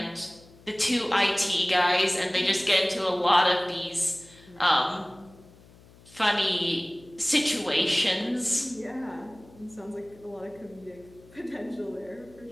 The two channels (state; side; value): noise; left; hum, 24 dB below the sound